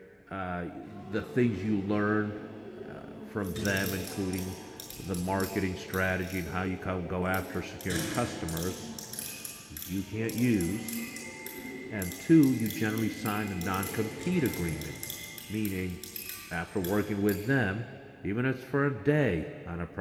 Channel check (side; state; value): both; identical; correlation 1.00